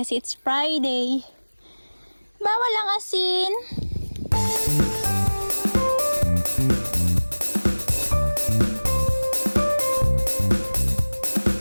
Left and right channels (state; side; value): inverted; both; correlation -1.00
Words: it's Friday. Bawal ang asin.